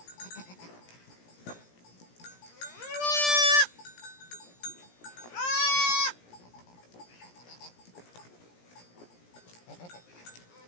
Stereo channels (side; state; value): right; late; 17 ms